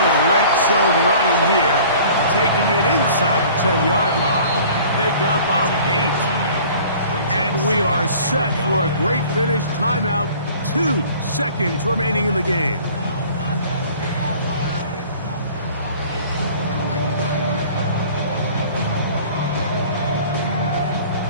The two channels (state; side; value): inverted; both; correlation -0.48